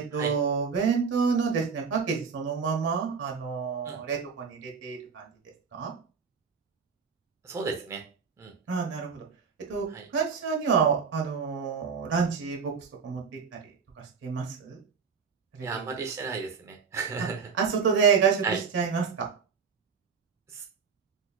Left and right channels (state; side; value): quieter; left; 5.9 dB